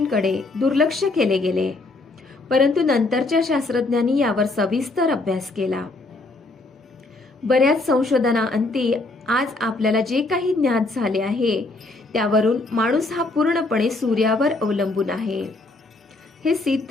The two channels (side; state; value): right; quieter; 3.1 dB